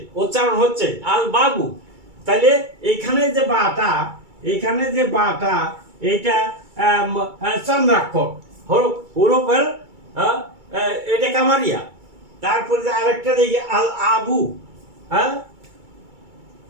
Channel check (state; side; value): late; left; 2.3 ms